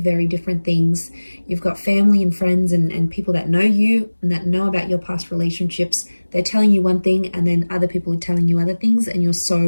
very different things. You've got family and friends and people that know you and that know about your past relationships. They're telling you one thing, and then other people are telling you other things, and you're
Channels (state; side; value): inverted; both; correlation -1.00